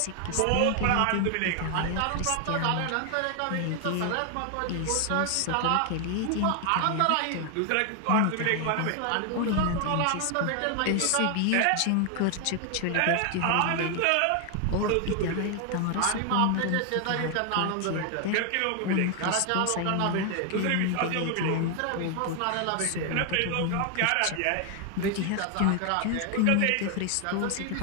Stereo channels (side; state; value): both; different; correlation 0.00